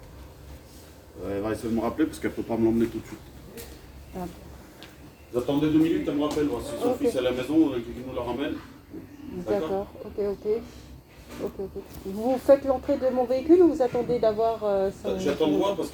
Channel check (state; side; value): identical; both; correlation 1.00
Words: Elle va essayer de me rappeler parce qu'elle ne peut pas me l'emmener tout de suite. Ah. Vous attendez 2 minutes, elle me rappelle. Voir si son fils est à la maison, qu'il nous la ramène. D'accord, ok. Vous faites l'entrée de mon véhicule ou vous attendez d'avoir son... J'attends de voir parce